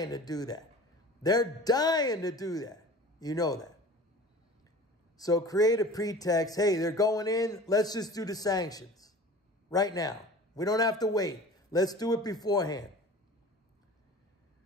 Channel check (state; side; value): normal; both; correlation 0.41